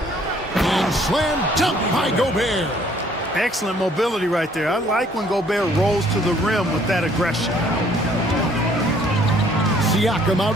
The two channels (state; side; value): normal; both; correlation 0.61